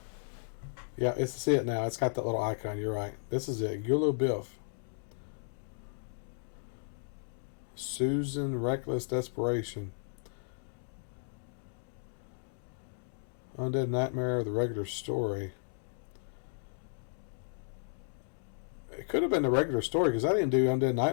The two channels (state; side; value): silent; right; digital silence